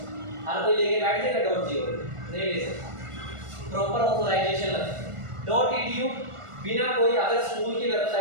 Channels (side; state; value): left; late; 1.4 ms